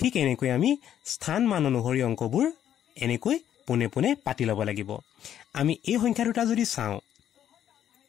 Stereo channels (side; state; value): right; quieter; 10.4 dB